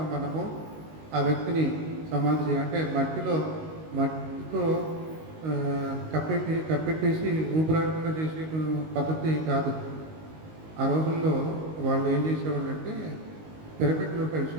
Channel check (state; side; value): late; left; 19 ms